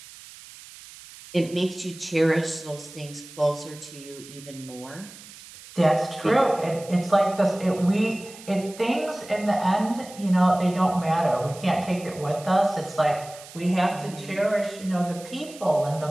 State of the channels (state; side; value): noise; right; hiss, 18 dB below the sound